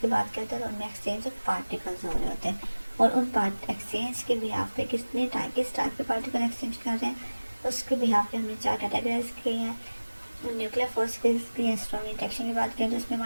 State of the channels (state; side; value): inverted; both; correlation -1.00